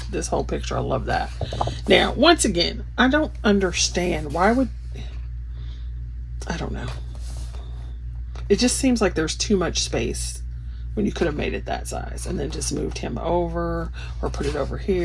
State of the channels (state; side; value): identical; both; correlation 1.00